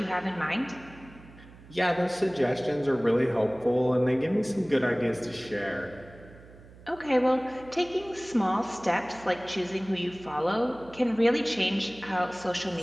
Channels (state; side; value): noise; right; hum, 21 dB below the sound